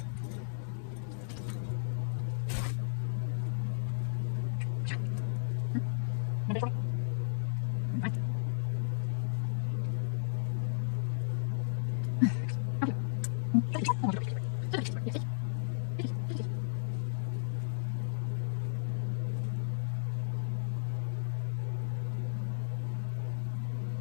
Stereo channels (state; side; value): silent; right; digital silence